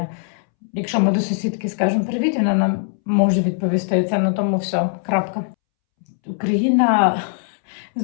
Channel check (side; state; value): right; silent; 65 dB below the other